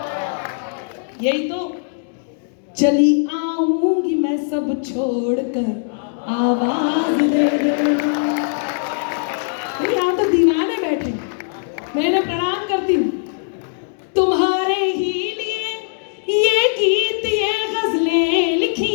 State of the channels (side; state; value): right; silent; digital silence